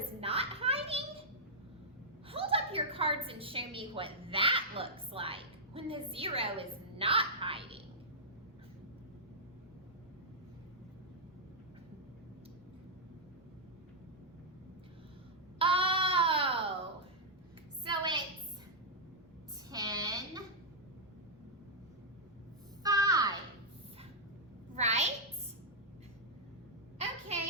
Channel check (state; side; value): normal; both; correlation -0.08